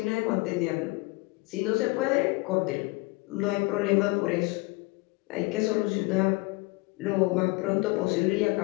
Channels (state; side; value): quieter; right; 24.9 dB